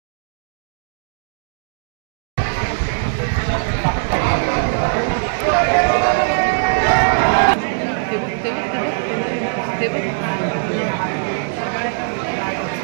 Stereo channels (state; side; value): silent; left; digital silence